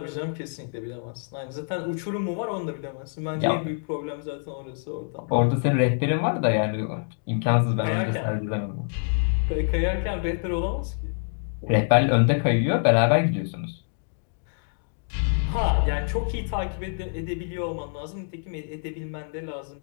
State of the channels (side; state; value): right; silent; digital silence